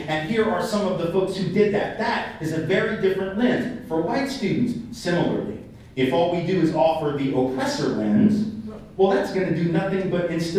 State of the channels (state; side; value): identical; both; correlation 1.00